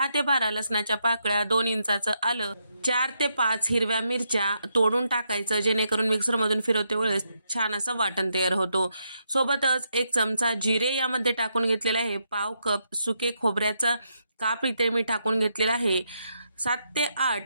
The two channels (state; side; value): inverted; both; correlation -0.80